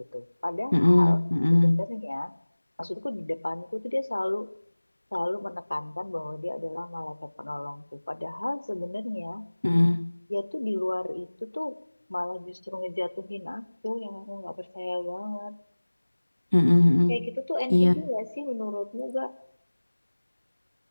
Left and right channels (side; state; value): both; inverted; correlation -1.00